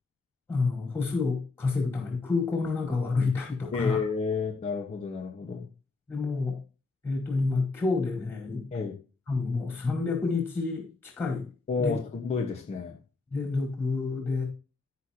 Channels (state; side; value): quieter; right; 3.8 dB